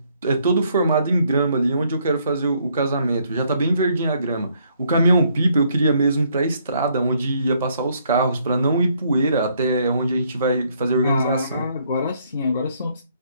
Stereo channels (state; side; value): inverted; both; correlation -0.69